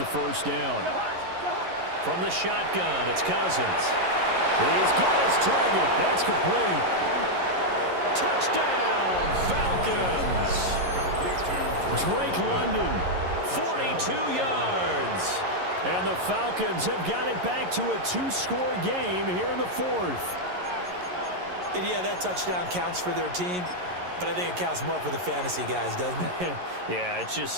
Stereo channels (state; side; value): late; left; 11 ms